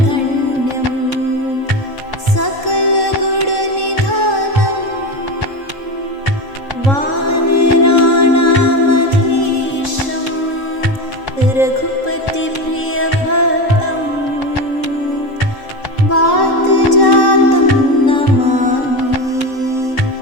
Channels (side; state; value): right; late; 3.7 ms